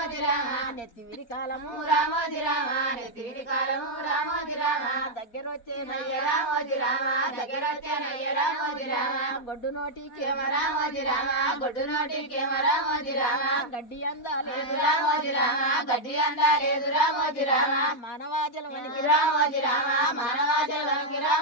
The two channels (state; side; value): late; right; 4.1 ms